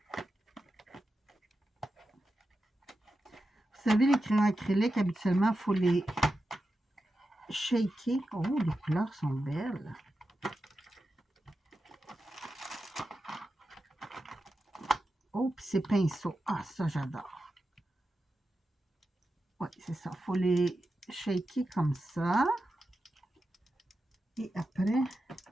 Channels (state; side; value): normal; both; correlation 0.90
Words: Vous savez, les crayons acryliques, habituellement, il faut les shaker. Oh, les couleurs sont belles. Oh, puis ces pinceaux. Ah, ça, j'adore. Oui, c'est ça. Il faut les shaker comme ça. Et après,